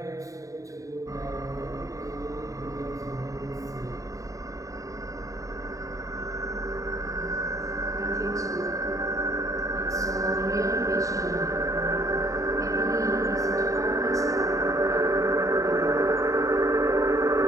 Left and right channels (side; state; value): left; late; 0.16 ms